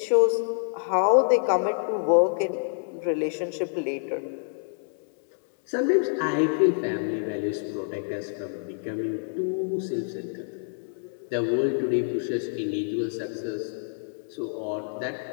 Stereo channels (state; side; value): silent; right; 60 dB below the other